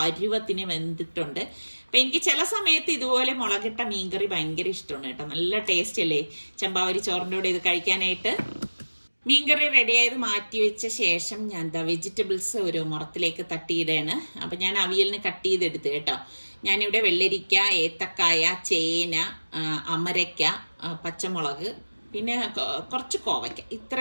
വെന്തിട്ടുണ്ട്. അപ്പം എനിക്ക് ചില സമയത്ത് ഇതുപോലെ മുളകിട്ട മീൻകറി ഭയങ്കര ഇഷ്ടമാണ് കേട്ടോ. നല്ല ടേസ്റ്റ് അല്ലേ ചെമ്പാവരി ചോറിൻ്റെ കൂടെ ഇത് കഴിക്കാനായിട്ട്. മീൻകറി റെഡിയായത് മാറ്റി വെച്ച ശേഷം ഞാൻ വെജിറ്റബിൾസ് ഒരു മുറത്തിലേക്ക് തട്ടിയിടുകയാണ്. അപ്പം ഞാൻ അവിയലിന് കട്ട് ചെയ്തെടുത്ത് കേട്ടോ. ഞാനിവിടെ വെള്ളരിക്ക, ഏത്തക്കായ, ചേന, അമരയ്ക്ക, പച്ചമുളക്, പിന്നെ കുറച്ച് കോവയ്ക്ക,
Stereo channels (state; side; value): inverted; both; correlation -1.00